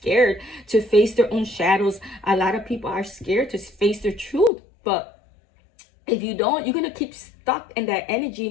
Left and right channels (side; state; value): right; drops out; at 4.5 s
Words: to face their own shadows. A lot of people are scared to face their truth. But if you don't, you're going to keep stuck in that